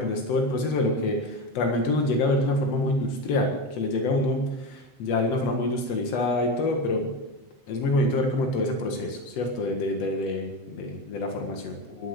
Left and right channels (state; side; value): late; right; 7.9 ms